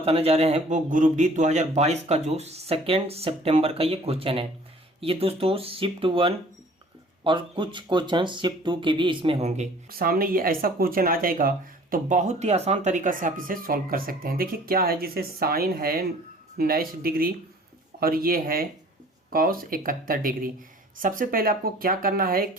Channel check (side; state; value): both; normal; correlation 0.51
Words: जा रहे हैं वो ग्रुप डी 2022 का जो 2 सितंबर का ये क्वेश्चन है। ये दोस्तों शिफ्ट 1 और कुछ क्वेश्चन शिफ्ट 2 के भी इसमें होंगे। सामने ये ऐसा क्वेश्चन आ जाएगा तो बहुत ही आसान तरीका से आप इसे सॉल्व कर सकते हैं। देखिए क्या है, जिसे साइन है 19 डिग्री और ये है कॉस 71 डिग्री। सबसे पहले आपको क्या करना है